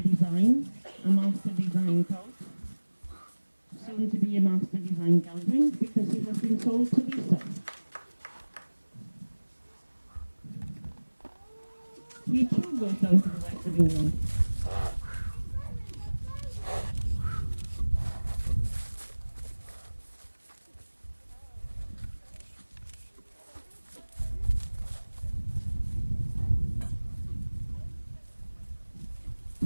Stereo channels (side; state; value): both; inverted; correlation -1.00